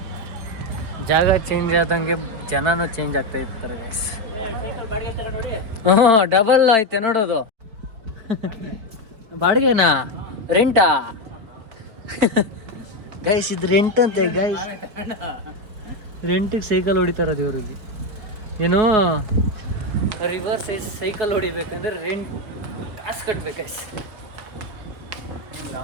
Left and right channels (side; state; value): left; late; 4.4 ms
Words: ಜಾಗ ಚೇಂಜ್ ಆದಂಗೆ ಜನನೂ ಚೇಂಜ್ ಆಗ್ತಾ ಇರ್ತಾರೆ ಗೈಸ್. ಡಬಲ್ ಐತೆ ನೋಡೋದು. ಬಾಡಿಗೆನಾ, ರೆಂಟಾ ಗೈಸ್? ಇದು ರೆಂಟ್ ಅಂತೆ ಗೈಸ್. ರೆಂಟಿಗೆ ಸೈಕಲ್ ಹೊಡಿತಾರದು ಇವರಿಗೆ. ಏನೋ ರಿವರ್ ಸೈಕಲ್ ಹೊಡಿಬೇಕಂದ್ರೆ ರೆಂಟ್ ಕಾಸು ಕಟ್ಬೇಕು ಗೈಸ್. ನಿಮ್ಗೆ ಆ